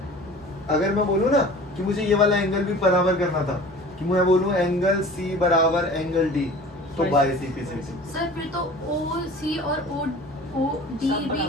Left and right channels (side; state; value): both; normal; correlation 0.42